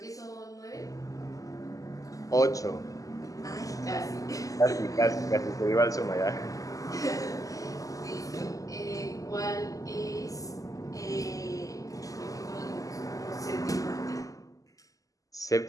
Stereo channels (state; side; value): late; right; 0.17 ms